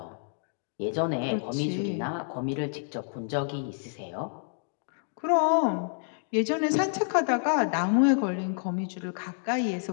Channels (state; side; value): silent; right; digital silence